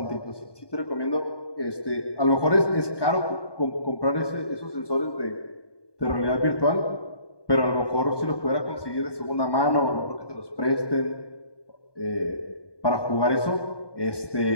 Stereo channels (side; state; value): right; late; 1.2 ms